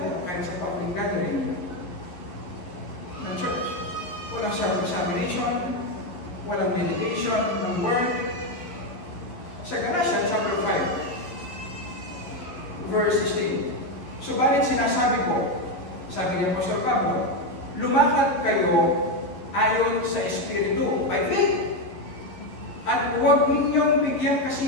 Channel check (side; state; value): right; late; 11 ms